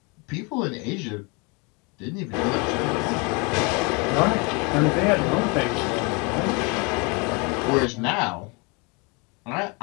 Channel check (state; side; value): quieter; right; 30.5 dB